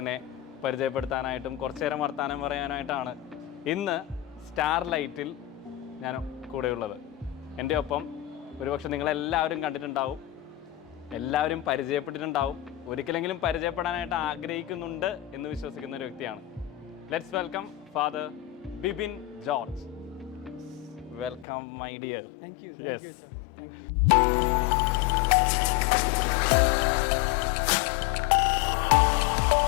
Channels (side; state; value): right; drops out; at 21.5 s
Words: പരിചയപ്പെടുത്താനായിട്ടും കുറച്ചു നേരം വർത്താനം പറയാനായിട്ടാണ് ഇന്ന് സ്റ്റാർ ലൈറ്റിൽ ഞാൻ കൂടെയുള്ളത്. എൻ്റെ ഒപ്പം ഒരുപക്ഷെ നിങ്ങളെല്ലാവരും കണ്ടിട്ടുണ്ടാവും, എല്ലാവരും പരിചയപ്പെട്ടിട്ടുണ്ടാവും, ഒരിക്കലെങ്കിലും പരിചയപ്പെടാനായിട്ട് ആഗ്രഹിക്കുന്നുണ്ട് എന്ന് വിശ്വസിക്കുന്ന ഒരു വ്യക്തിയാണ്. Let's welcome father Bibin George. Welcome my dear. Thank you.